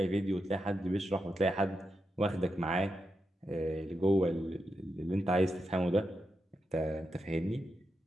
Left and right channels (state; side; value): normal; both; correlation 0.86